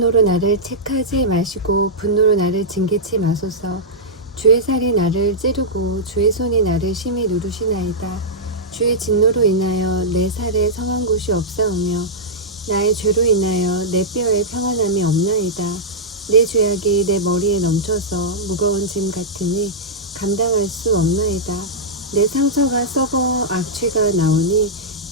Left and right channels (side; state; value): both; normal; correlation -0.10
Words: 나를 책하지 마시고 분노로 나를 징계치 마소서. 주의 살이 나를 찌르고 주의 손이 나를 심히 누르시나이다. 주의 진노로 인하여 내 살에 성한 곳이 없사오며 나의 죄로 인하여 내 뼈에 평안함이 없나이다. 내 죄악이 내 머리에 넘쳐서 무거운 짐 같으니 감당할 수 없나이다. 내 상처가 썩어 악취가 나오니